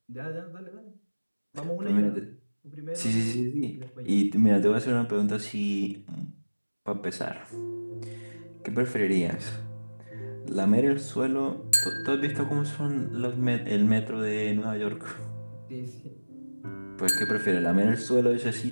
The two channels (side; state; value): both; inverted; correlation -1.00